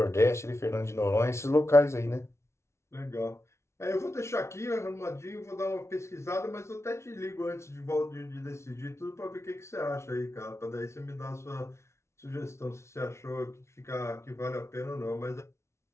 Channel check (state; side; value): late; right; 0.13 ms